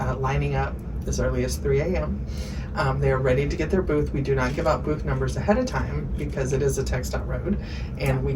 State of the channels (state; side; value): identical; both; correlation 1.00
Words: lining up as early as 3 a.m. They are ready to get their booth. We do not give out booth numbers ahead of time because it is a TxDOT road and we